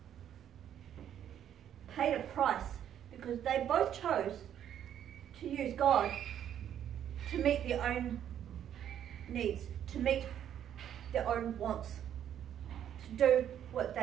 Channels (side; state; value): left; quieter; 10.1 dB